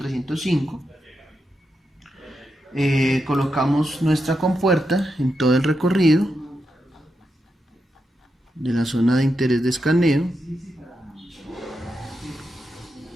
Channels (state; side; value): normal; both; correlation 0.86